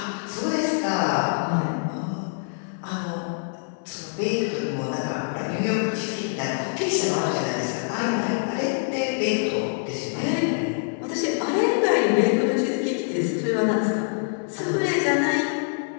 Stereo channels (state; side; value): silent; right; digital silence